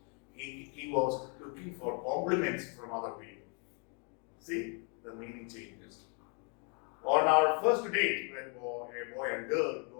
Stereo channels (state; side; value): quieter; right; 37.2 dB